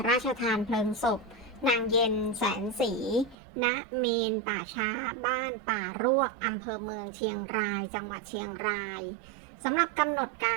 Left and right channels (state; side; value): drops out; left; at 3.4 s